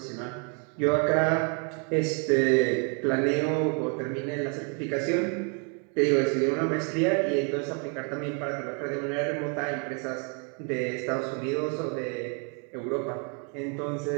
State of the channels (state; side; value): quieter; left; 38.0 dB